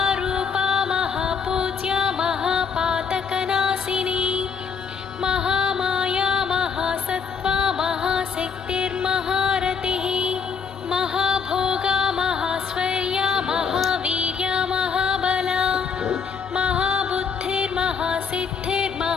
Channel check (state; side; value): quieter; right; 6.1 dB